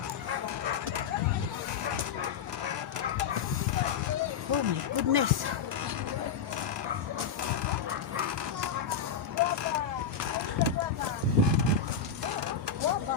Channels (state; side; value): quieter; right; 6.7 dB